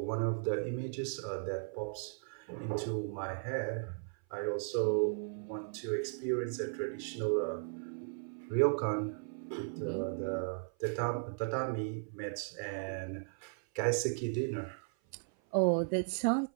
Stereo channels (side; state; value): left; silent; 54 dB below the other